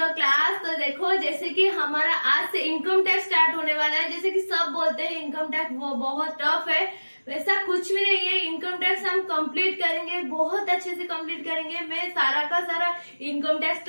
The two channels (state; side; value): inverted; both; correlation -1.00